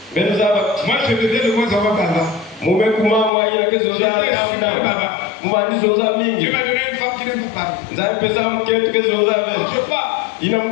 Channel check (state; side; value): drops out; right; at 3.3 s